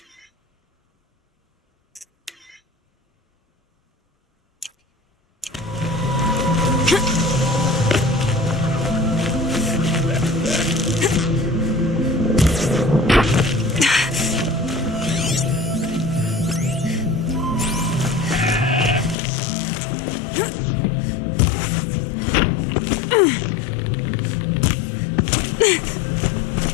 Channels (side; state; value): right; drops out; at 19.2 s